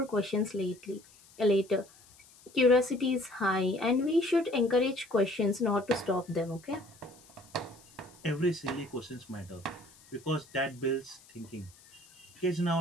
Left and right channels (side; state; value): left; noise; hiss, 25 dB below the sound